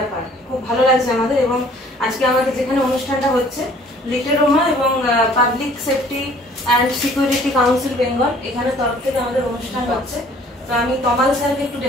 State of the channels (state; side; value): normal; both; correlation 0.55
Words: খুব ভালো লাগছে আমাদের। এবং আজকে আমাদের যেখানে অনুষ্ঠানটা হচ্ছে লিটল রোমা এবং public safety and security council Bengal, এখানে তরফ থেকে আমাদের অনুষ্ঠান হচ্ছে। তো আমি তমাল স্যারকে একটু